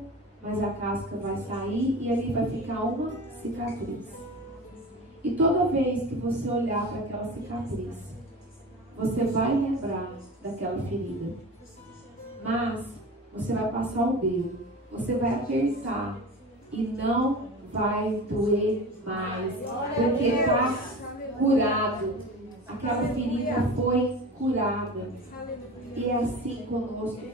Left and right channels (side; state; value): both; normal; correlation 0.33